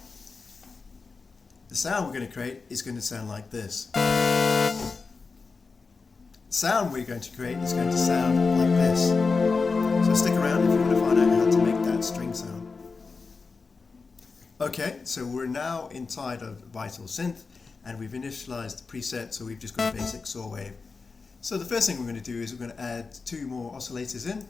The sound we're going to create is going to sound like this. The sound we're going to create is going to sound like this. So stick around if you want to find out how to make that string sound. Okay, so we're now inside of Vital synth, and we've initialized the preset, so we've just got a basic saw wave. So the first thing we're going to do is we're going to add 2 more oscillators in,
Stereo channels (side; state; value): right; quieter; 4.5 dB